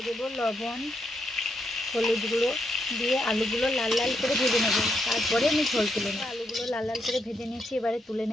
দেবো লবণ, হলুদ গুঁড়ো দিয়ে আলুগুলো লাল লাল করে ভেজে নেব। তারপরে আমি ঝোল তুলে নেব। আলুগুলো লাল লাল করে ভেজে নিয়েছি, এবারে তুলে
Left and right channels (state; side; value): normal; both; correlation 0.80